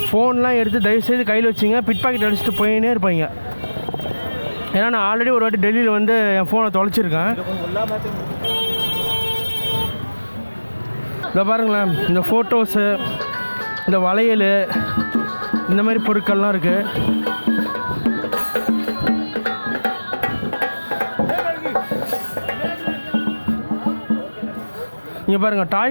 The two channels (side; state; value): both; inverted; correlation -1.00